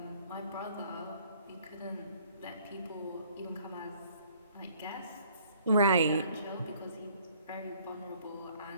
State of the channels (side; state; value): both; inverted; correlation -0.59